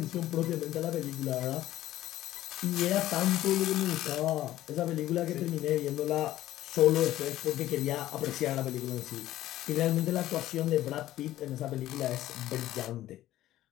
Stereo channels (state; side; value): quieter; right; 14.3 dB